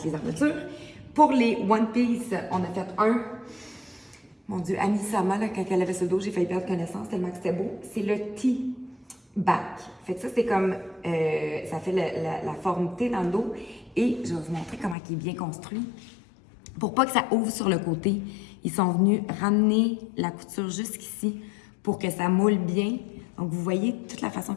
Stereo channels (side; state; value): right; drops out; at 15.0 s